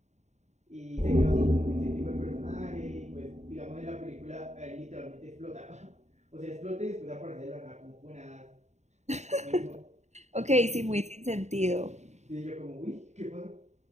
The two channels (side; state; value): left; late; 0.33 ms